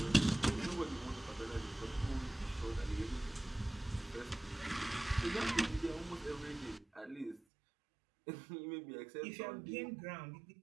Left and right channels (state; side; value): drops out; left; at 7.4 s